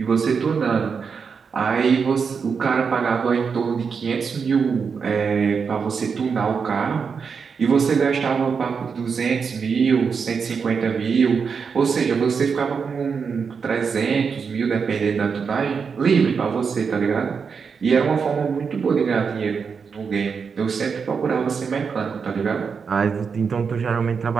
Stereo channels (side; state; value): left; quieter; 5.9 dB